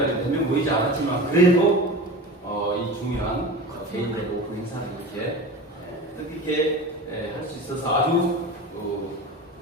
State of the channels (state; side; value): normal; both; correlation 0.31